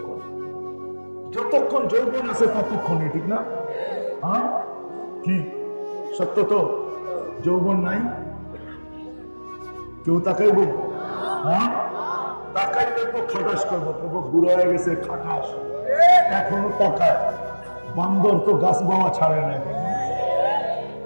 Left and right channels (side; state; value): both; inverted; correlation -1.00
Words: যতক্ষণ যৌবন আছে ততক্ষণই, ঠিক না? হ্যাঁ, কি সত্য তো? যৌবন নাই, কেউ তাকাইব? হ্যাঁ, তাকাইলে তো খাটাস করবো, তবু বুড়ো হয়ে গেছে খাটাস, এখনো তাকায়। বান্দর তো গাছ বাওয়া ছাড়ে না এখনো।